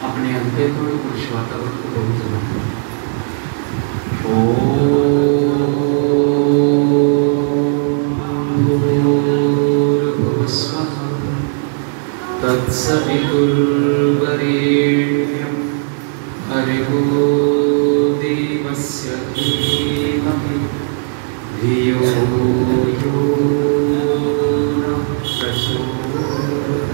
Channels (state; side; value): silent; left; digital silence